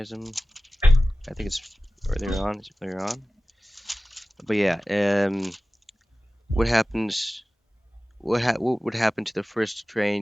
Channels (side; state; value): both; normal; correlation 0.96